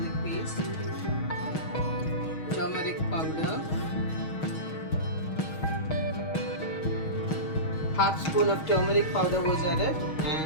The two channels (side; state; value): right; late; 6.3 ms